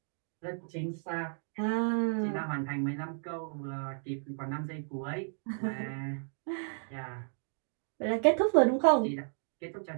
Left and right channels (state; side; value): silent; left; 56 dB below the other